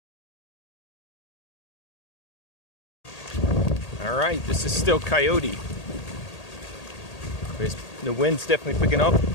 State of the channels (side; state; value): right; late; 1.8 ms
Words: Alright, this is still Coyote. The wind's definitely picking up.